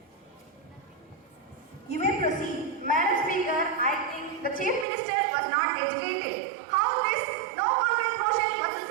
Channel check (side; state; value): left; drops out; at 4.9 s